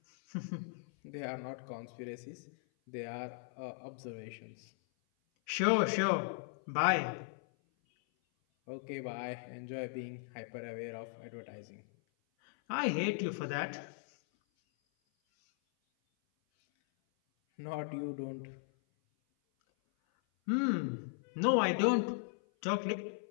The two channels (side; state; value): right; silent; 53 dB below the other